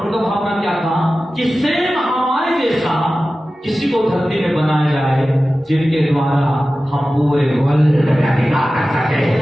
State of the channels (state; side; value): normal; both; correlation 0.95